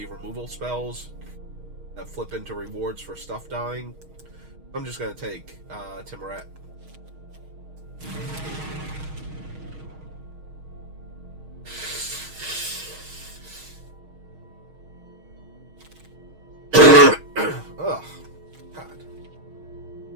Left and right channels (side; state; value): left; late; 6.4 ms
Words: removal spells that flip into rewards for stuff dying. I'm just going to take Timoret. Ugh. God.